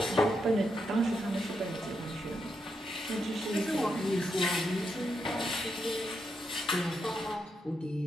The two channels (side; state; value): both; normal; correlation 0.82